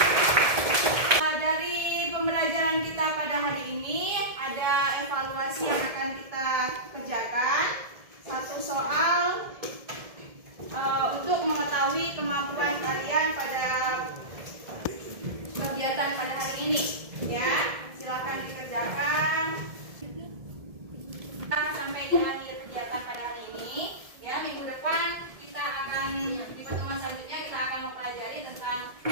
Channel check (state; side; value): late; left; 1.7 ms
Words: Dari pembelajaran kita pada hari ini, ada evaluasi yang akan kita kerjakan. Satu soal untuk mengetahui kemampuan kalian pada kegiatan pada hari ini, ya. Silakan dikerjakan. Kita sampai di akhir kegiatan pada hari ini, ya. Minggu depan kita akan di pertemuan selanjutnya kita akan mempelajari tentang